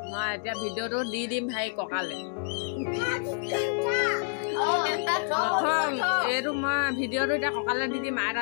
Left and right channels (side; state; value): right; silent; digital silence